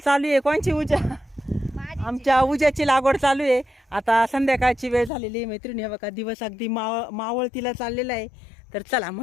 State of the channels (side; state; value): right; drops out; at 5.1 s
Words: आहे. कोणची उजा? आमच्या उज्याची लागवड चालू आहे. आता संध्याकाळची वेळ झालेली आहे मैत्रिणी. बघा दिवस अगदी मावळतीला चाललेला आहे. तर चला